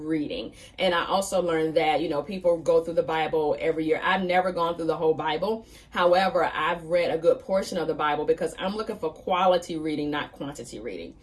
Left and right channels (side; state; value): both; identical; correlation 1.00